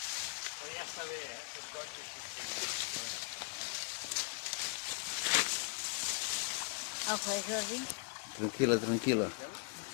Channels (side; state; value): right; quieter; 35.6 dB